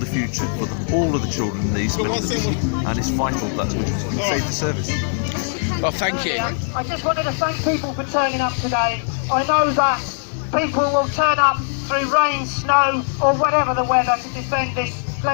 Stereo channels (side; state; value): right; silent; digital silence